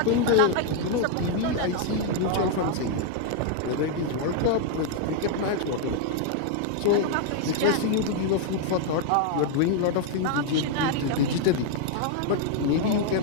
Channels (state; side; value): different; both; correlation 0.00